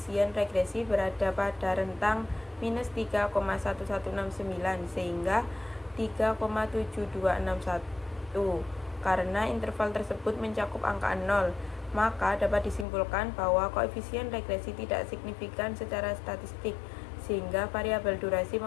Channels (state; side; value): drops out; right; at 12.9 s